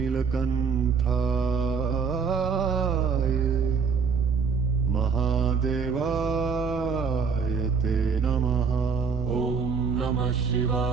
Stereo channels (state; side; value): quieter; left; 5.7 dB